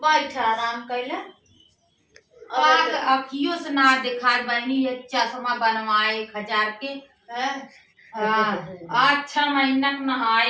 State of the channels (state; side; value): identical; both; correlation 1.00